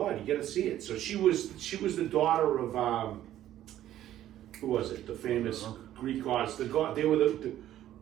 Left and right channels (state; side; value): quieter; left; 12.6 dB